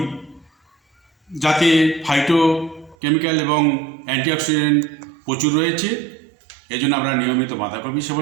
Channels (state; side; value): drops out; left; at 3.0 s